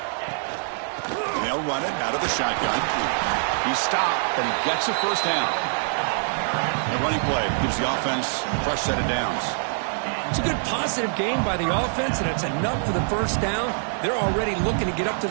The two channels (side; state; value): left; silent; digital silence